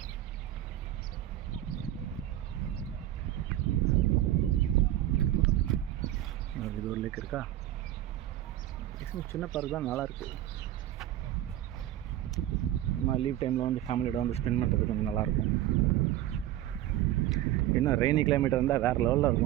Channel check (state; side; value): quieter; left; 13.4 dB